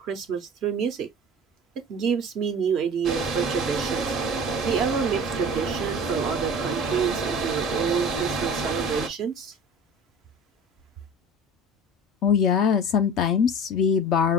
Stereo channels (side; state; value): both; normal; correlation 0.38